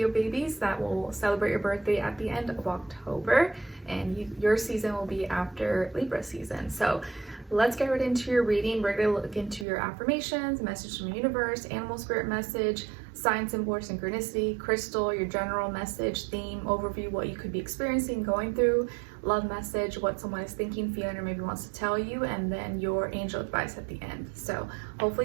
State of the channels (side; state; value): left; drops out; at 9.7 s